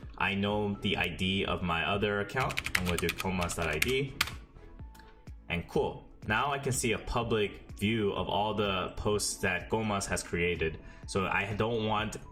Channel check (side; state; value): both; identical; correlation 1.00